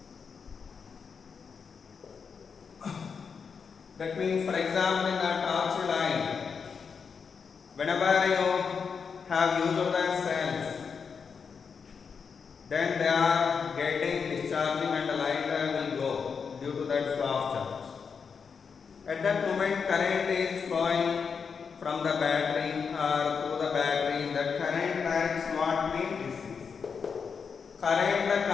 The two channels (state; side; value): quieter; right; 5.9 dB